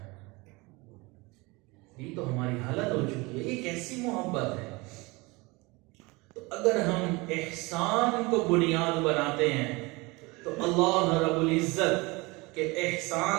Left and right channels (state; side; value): quieter; left; 24.6 dB